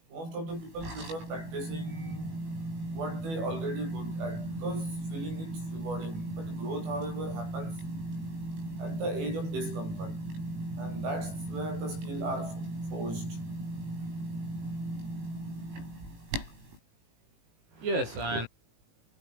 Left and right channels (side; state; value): left; late; 18 ms